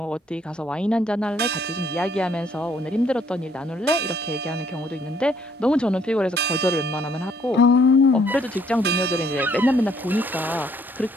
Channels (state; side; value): normal; both; correlation 0.65